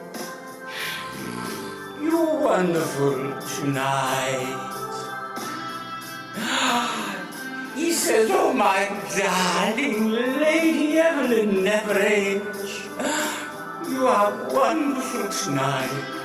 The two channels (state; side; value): identical; both; correlation 1.00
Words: you're wonderful tonight. He says, oh my darling Lady Evelyn Neverage, you are wonderful tonight.